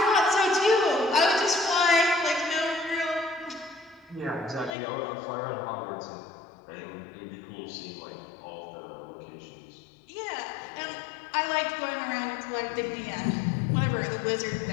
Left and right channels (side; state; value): right; drops out; at 4.8 s